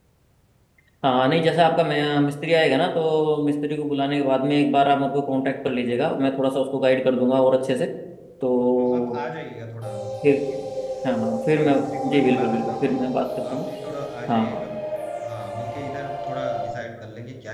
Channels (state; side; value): identical; both; correlation 1.00